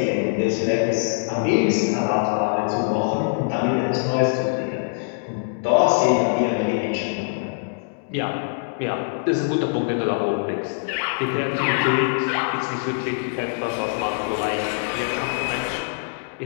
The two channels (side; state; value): right; silent; digital silence